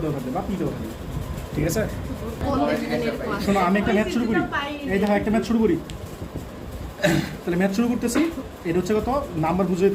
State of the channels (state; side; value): identical; both; correlation 1.00